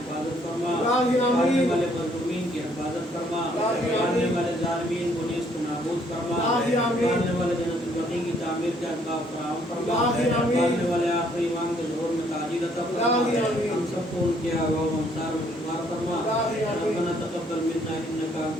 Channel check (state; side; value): normal; both; correlation 0.66